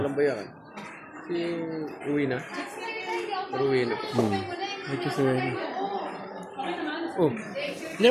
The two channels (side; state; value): both; identical; correlation 1.00